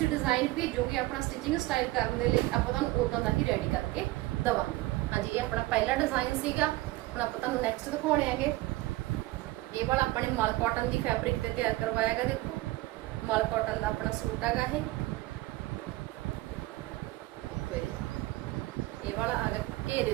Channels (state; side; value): quieter; left; 18.9 dB